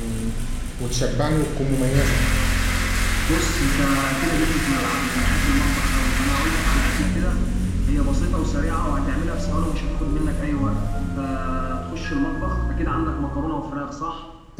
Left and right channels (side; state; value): both; identical; correlation 1.00